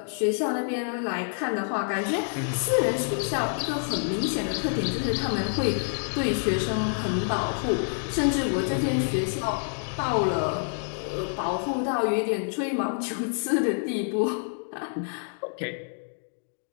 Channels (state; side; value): silent; right; digital silence